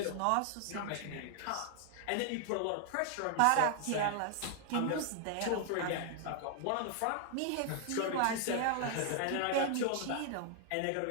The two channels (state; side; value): different; both; correlation 0.00